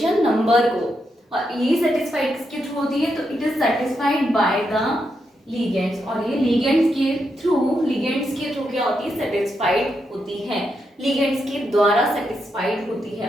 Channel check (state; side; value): normal; both; correlation 0.82